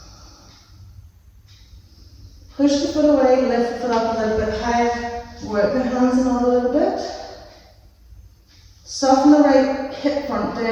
Push the foot away, lift the foot up a little bit higher. Work the hands in a little bit. Soften the right hip front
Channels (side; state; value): both; identical; correlation 1.00